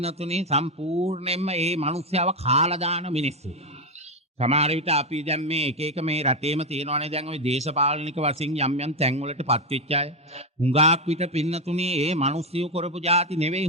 සම්පූර්ණයෙන්ම මේ මිනිස්යාව කාලා දාන මිනිස්සු. සමහර විට අපි දැන් මේ එක එක මේ රටේම තියෙනවානේ දැන් ওই දේශපාලනික වශයෙන් යම් යම් තැන් වලටපත් වෙච්ච අය. හුඟාක් විට පින්නතුනේ මේ මිනිස්සු කරපු જાති නෙවෙයි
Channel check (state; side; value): normal; both; correlation 0.09